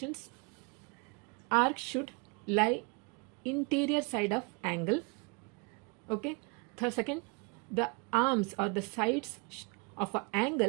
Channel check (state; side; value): quieter; left; 31.9 dB